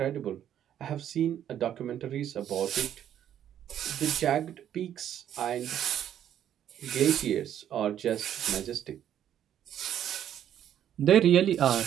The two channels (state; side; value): quieter; left; 10.4 dB